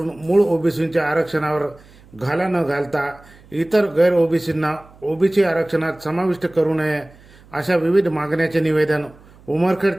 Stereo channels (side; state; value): right; noise; hum, 25 dB below the sound